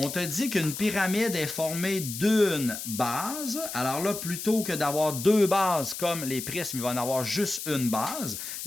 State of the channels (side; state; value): left; noise; hiss, 7 dB below the sound